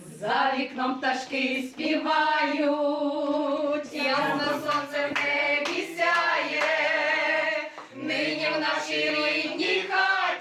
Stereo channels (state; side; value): identical; both; correlation 1.00